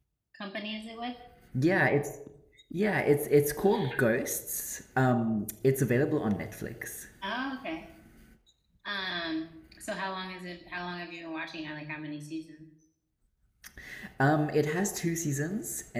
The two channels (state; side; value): identical; both; correlation 1.00